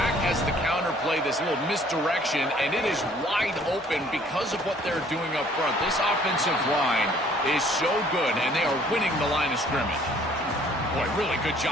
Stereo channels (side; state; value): both; normal; correlation 0.58